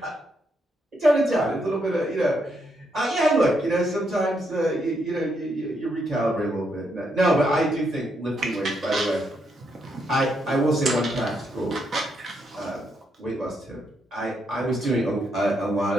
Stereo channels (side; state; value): both; normal; correlation 0.78